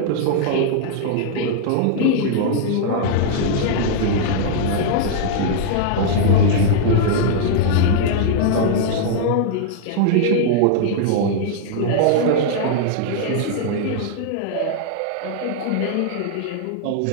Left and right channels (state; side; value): different; both; correlation -0.01